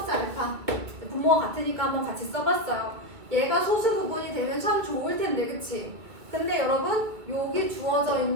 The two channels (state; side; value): late; left; 2.2 ms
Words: 알파 분모가 같으니까 한번 같이 써봤어요. 얘가 소수 부분이 되면 참 좋을 텐데, 그치? 근데 여러분 여기 주어져